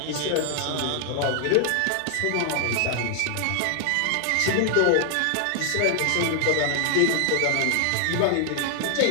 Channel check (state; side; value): different; both; correlation 0.00